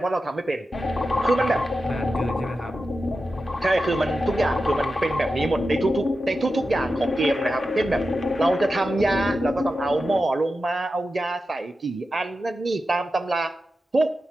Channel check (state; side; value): normal; both; correlation 0.91